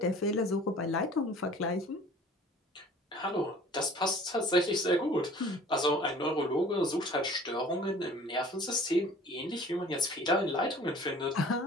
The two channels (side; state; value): both; normal; correlation 0.48